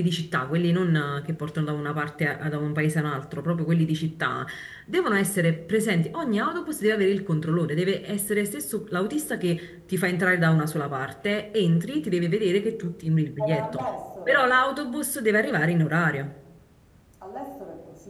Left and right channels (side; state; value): both; identical; correlation 1.00